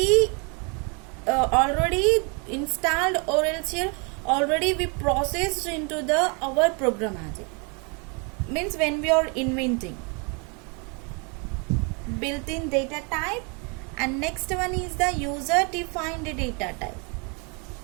installed, or else here already we processed into the our programmatic. Means when we are inventing built-in data type, and next one is the user defined data type.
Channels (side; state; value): left; quieter; 33.9 dB